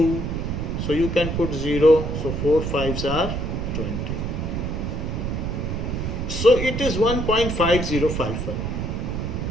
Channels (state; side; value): noise; right; rumble, 2 dB below the sound